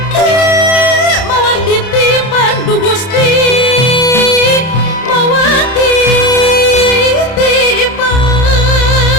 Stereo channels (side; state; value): right; late; 31 ms